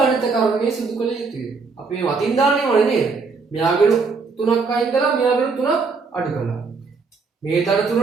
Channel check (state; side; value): quieter; left; 4.6 dB